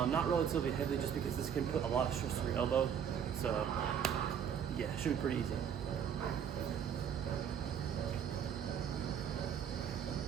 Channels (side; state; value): left; quieter; 8.2 dB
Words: relatively heavy, just because this can put a lot of stress on your elbow. So yeah, it should be pretty easy.